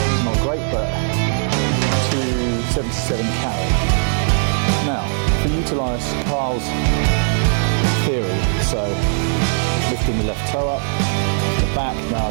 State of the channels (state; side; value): silent; left; digital silence